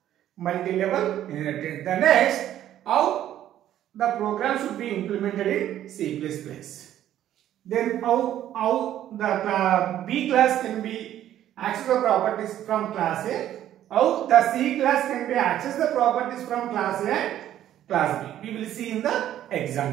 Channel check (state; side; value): quieter; left; 11.8 dB